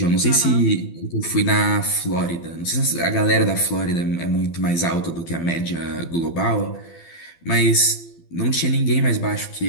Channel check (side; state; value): right; late; 12 ms